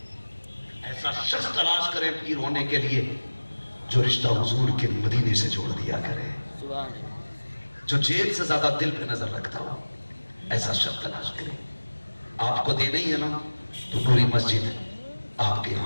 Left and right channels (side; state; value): both; inverted; correlation -1.00